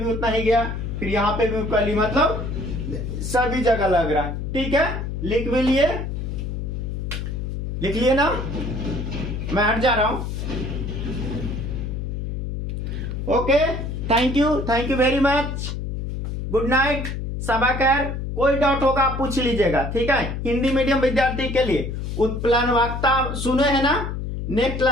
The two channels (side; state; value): left; noise; hum, 4 dB below the sound